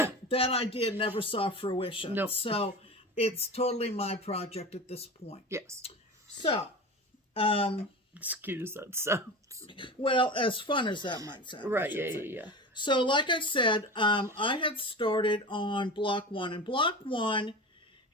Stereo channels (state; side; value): normal; both; correlation 0.29